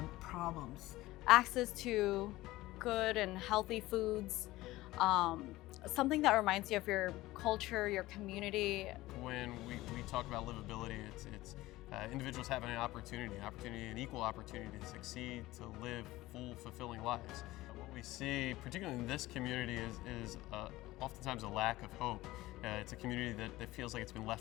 problems. Access to good and healthy foods, something that reminds you of your culture, your community. When we talk about livability, it's individuals having an opportunity, an equal opportunity to succeed, to live full, fulfilling lives. What we see, particularly in this community, is oftentimes a lack of hope. It's a community that feels like it's been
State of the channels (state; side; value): quieter; right; 17.9 dB